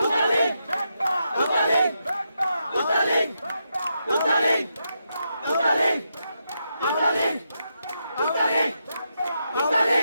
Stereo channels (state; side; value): inverted; both; correlation -0.83